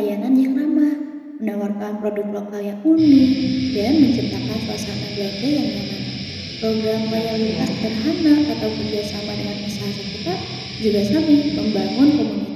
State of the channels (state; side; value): identical; both; correlation 1.00